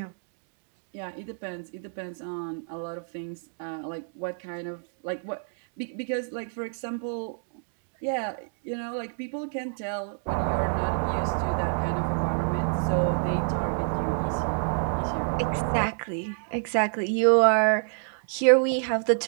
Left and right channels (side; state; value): left; silent; 59 dB below the other